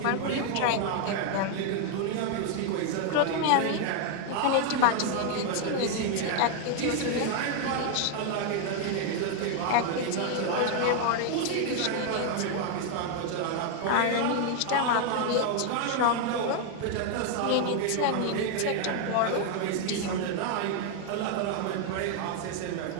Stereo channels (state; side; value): different; both; correlation 0.00